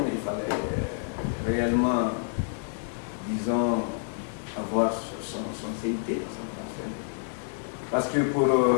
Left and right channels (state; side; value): silent; right; 59 dB below the other